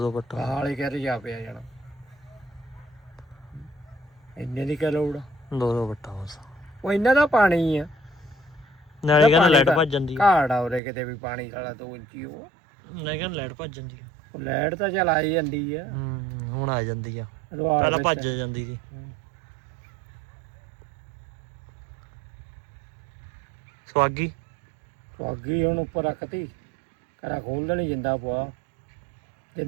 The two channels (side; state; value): left; drops out; at 10.8 s